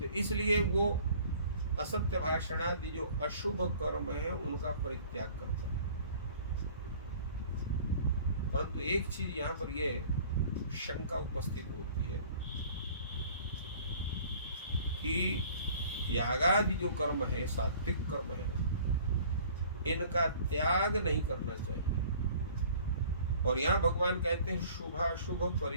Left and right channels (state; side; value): inverted; both; correlation -0.51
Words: इसलिए वो असत्य भाषण आदि जो अशुभ कर्म है उनका परित्याग करता है। परंतु एक चीज यहाँ पर यह शंका उपस्थित होती है कि यागादि जो कर्म है, सात्विक कर्म है, इनका त्याग नहीं करना चाहिए। और यहाँ भगवान कहते हैं शुभाशुभ